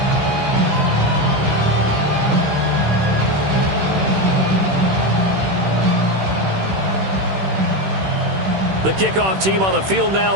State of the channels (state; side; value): late; left; 16 ms